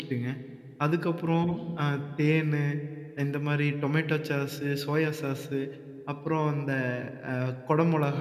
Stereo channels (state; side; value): identical; both; correlation 1.00